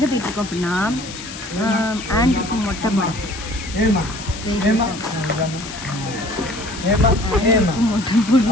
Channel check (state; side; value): noise; left; hiss, 12 dB below the sound